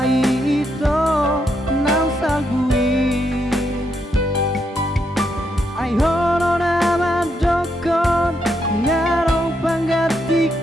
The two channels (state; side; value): normal; both; correlation 0.79